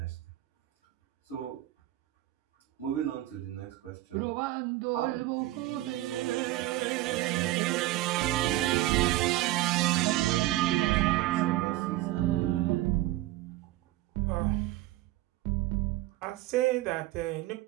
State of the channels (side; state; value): left; quieter; 16.4 dB